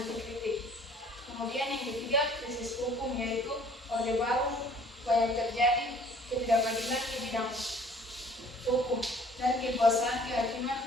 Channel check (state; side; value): normal; both; correlation 0.54